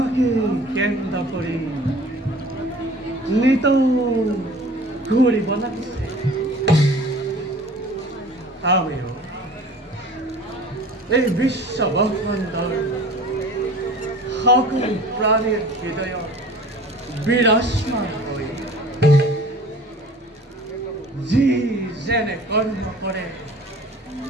কেন্দ্র করে নিত ঘুরি বনাইছে আমিও এই বিশ্ব ব্রহ্মাণ্ডর সকল প্রাণীর হৃদয় বিরাজমান হই যি যেনে কর্ম করে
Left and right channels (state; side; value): normal; both; correlation 0.44